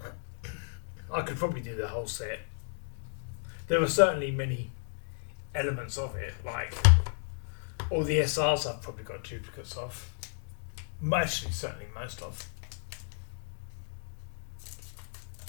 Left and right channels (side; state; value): right; silent; digital silence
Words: I could probably do the whole set There are certainly many elements of it, like all the SRs I've probably got duplicates of. Actually, certainly most of.